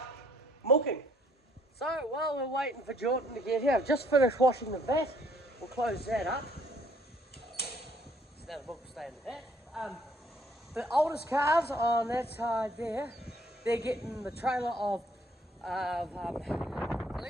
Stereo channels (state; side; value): normal; both; correlation 0.63